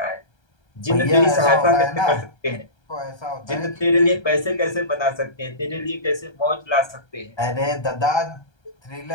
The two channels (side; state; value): right; late; 1.3 ms